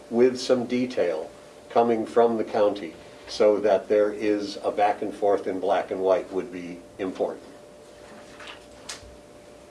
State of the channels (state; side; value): identical; both; correlation 1.00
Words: with some detail coming from the county so that there is a back and forth in black and white would be important.